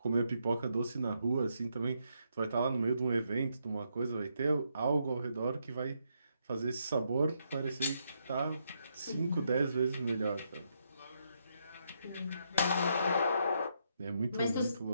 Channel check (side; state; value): both; inverted; correlation -0.78